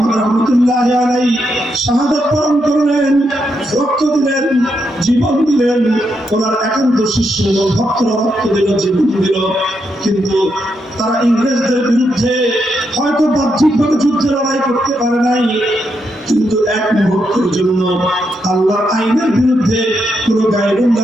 রাহমাতুল্লাহি আলাইহি শাহাদাত বরণ করলেন, রক্ত দিলেন, জীবন দিলেন। ওনার একান্ত শিষ্য ভক্তরা রক্ত দিল, জীবন দিল। কিন্তু তারা ইংরেজদের বিরুদ্ধে হয়তো বাহ্যিকভাবে যুদ্ধে লড়াই করতে পারে নাই, কিন্তু এক মুহূর্তের জন্য আল্লাহর আইনের বিরুদ্ধে কোন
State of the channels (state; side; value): normal; both; correlation 0.81